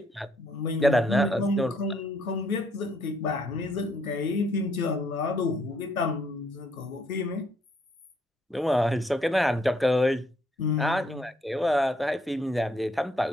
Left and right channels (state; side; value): normal; both; correlation 0.69